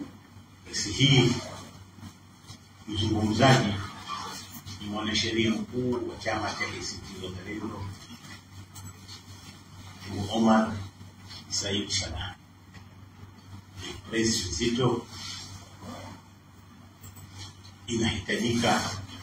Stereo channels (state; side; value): identical; both; correlation 1.00